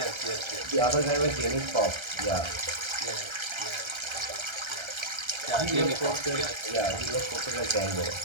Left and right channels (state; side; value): late; left; 1.3 ms